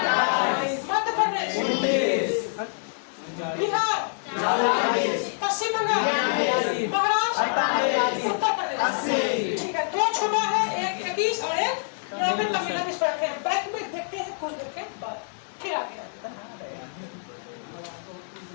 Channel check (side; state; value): right; silent; digital silence